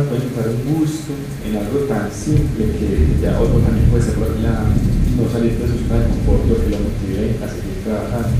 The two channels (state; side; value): identical; both; correlation 1.00